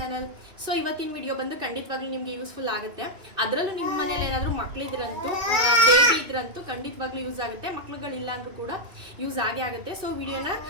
So ಇವತ್ತಿನ ವಿಡಿಯೋ ಬಂದು ಖಂಡಿತವಾಗ್ಲೂ ನಿಮಗೆ ಯೂಸ್ಫುಲ್ ಆಗುತ್ತೆ. ಅದರಲ್ಲೂ ನಿಮ್ಮ ಮನೇಲಿ ಏನಾದರೂ ಮಕ್ಕಳಿದ್ರಂತೂ ಬೇಬಿ ಇದ್ರಂತೂ ಖಂಡಿತವಾಗ್ಲೂ ಯೂಸ್ ಆಗುತ್ತೆ. ಮಕ್ಳುಗಳಿಲ್ಲ ಅಂದರೂ ಕೂಡ ಯೂಸ್ ಆಗೇ ಆಗುತ್ತೆ. ಸೊ ವಿಡಿಯೋನ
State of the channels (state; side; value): late; left; 2.6 ms